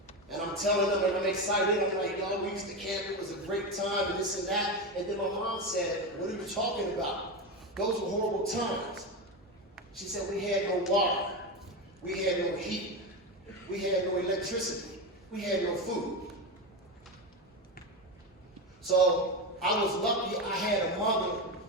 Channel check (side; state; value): both; normal; correlation 0.16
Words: And I'm telling them, and I'm excited. I'm like, y'all, we used to camp. It was a great time, and this and that. And then my mom said, what are you talking about? Those were horrible times. She said, we had no water. We had no heat. We had no electricity. We had no food. So I was lucky I had a mother